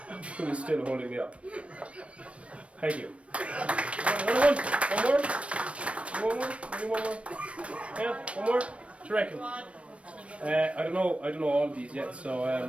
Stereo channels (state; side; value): late; left; 0.062 ms